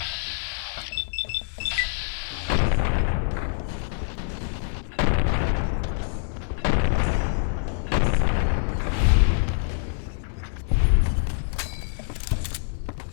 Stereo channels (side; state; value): right; silent; 62 dB below the other